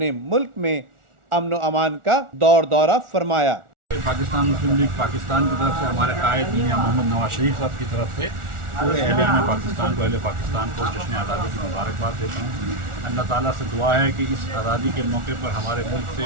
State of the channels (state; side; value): late; left; 1.4 ms